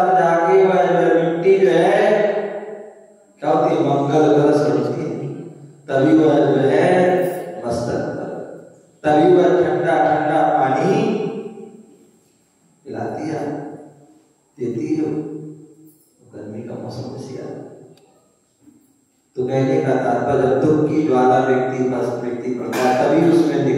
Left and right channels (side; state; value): both; identical; correlation 1.00